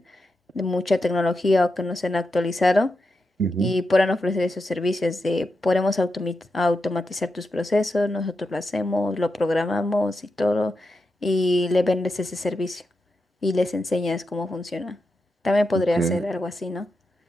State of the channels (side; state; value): both; normal; correlation 0.87